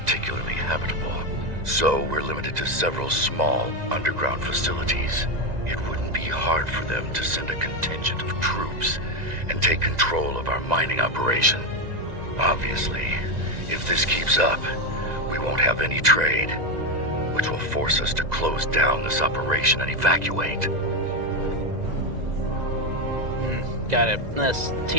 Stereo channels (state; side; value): late; left; 1.9 ms